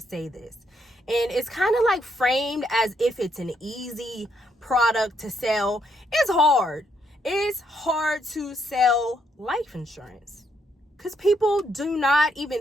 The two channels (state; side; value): normal; both; correlation 0.75